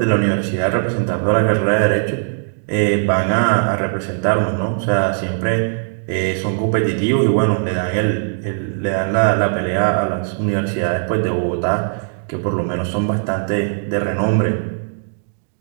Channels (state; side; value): silent; left; digital silence